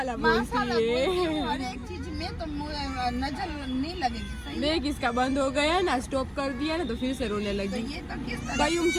बोलती है। हर एक चीज में तो नजर नहीं लगेगी। सही देख इसका बंद हो गया ना, स्टॉप कर दिया ना, तो फिर से रोने तो लगी। ये तो किस तरह। कयूम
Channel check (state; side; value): identical; both; correlation 1.00